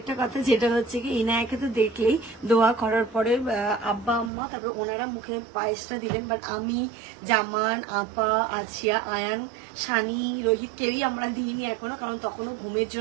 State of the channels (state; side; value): drops out; left; at 4.3 s